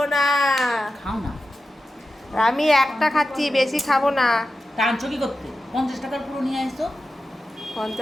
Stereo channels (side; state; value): both; normal; correlation 0.92